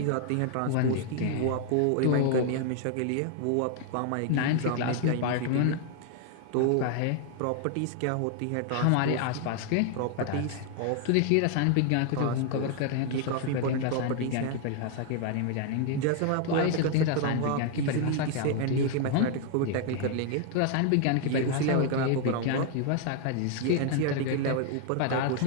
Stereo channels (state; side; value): different; both; correlation 0.00